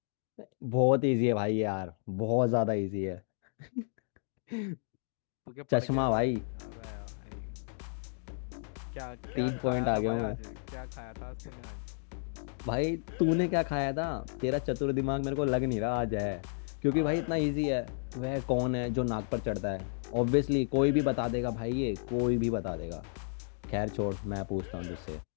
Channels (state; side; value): silent; right; digital silence